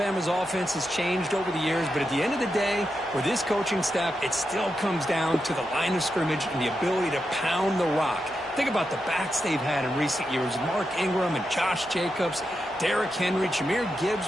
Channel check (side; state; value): both; normal; correlation 0.87